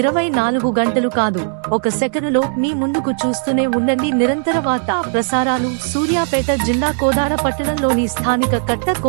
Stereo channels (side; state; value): left; silent; digital silence